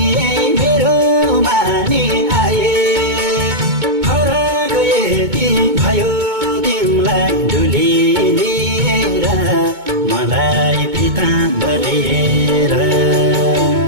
मेरो मानी आए फरक यति भयो तिमीलाई डुली लिएर मलाई पिताम्बरेर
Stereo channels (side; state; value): left; late; 2.2 ms